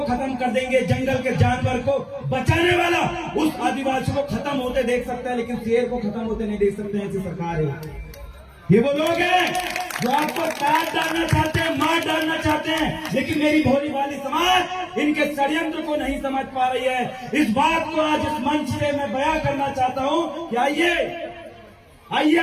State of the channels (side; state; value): both; identical; correlation 1.00